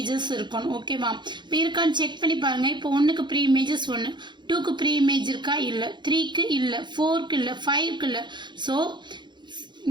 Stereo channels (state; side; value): late; left; 0.22 ms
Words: இருக்கணும். ஓகேவா. இப்போ இருக்கான்னு செக் பண்ணி பாருங்கள். இப்போ 1க்கு ப்ரீ இமேஜஸ் 1, 2க்கு ப்ரீ இமேஜ் இருக்கா இல்லை, 3க்கு இல்லை, 4க்கு இல்லை, 5க்கு இல்லை. ஸோ